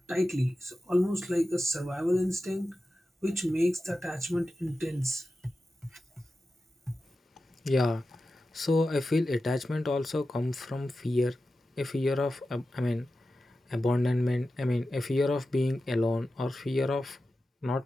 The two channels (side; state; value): both; normal; correlation 0.93